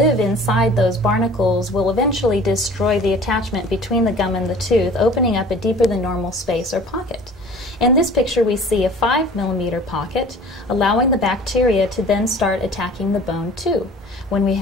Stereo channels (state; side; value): normal; both; correlation 0.46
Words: inside those barnacles will eventually destroy the attachment between the gum and the tooth, opening up a deeper than normal space or pocket. In this picture we see a 5mm pocket, allowing the bacteria to then start attacking the bone too. When we